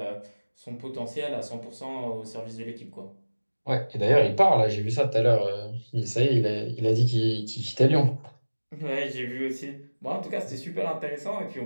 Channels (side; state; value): both; inverted; correlation -1.00